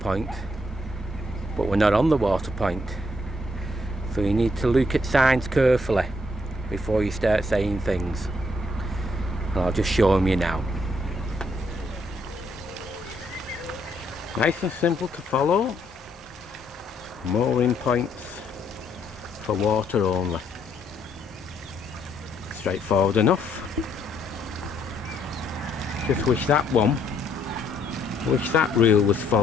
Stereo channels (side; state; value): both; normal; correlation 0.71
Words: but we're not on the water point. So you need to look at signs carefully before you start saying things. And I'll just show them you now. Nice and simple to follow. Mooring points for water only. Straightforward enough. Just wish that rule was